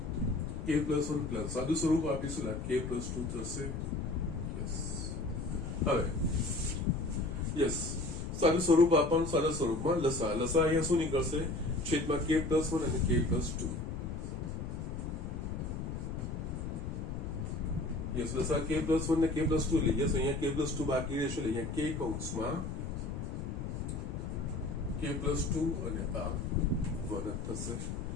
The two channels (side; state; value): left; noise; rumble, 5 dB below the sound